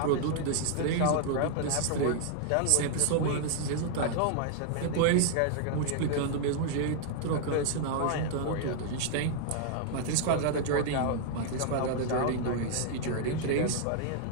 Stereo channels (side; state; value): both; different; correlation -0.01